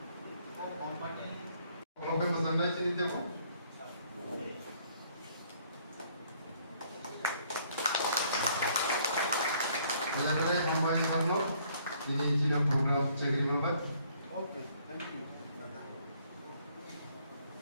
company. Kalau pesan naik sini tengok. Saya company Karno, ini Cina program cekir lobat. Okay, thank you.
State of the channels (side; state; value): both; inverted; correlation -0.64